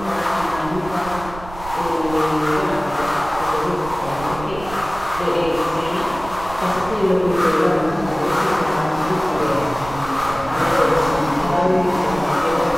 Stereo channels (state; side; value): noise; right; rumble, 14 dB below the sound